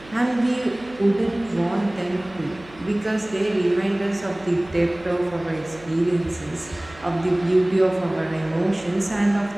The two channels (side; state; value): right; noise; hum, 21 dB below the sound